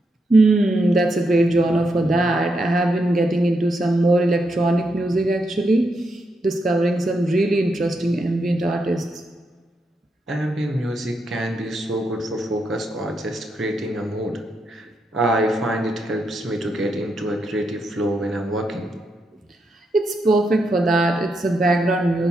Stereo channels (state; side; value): normal; both; correlation 0.82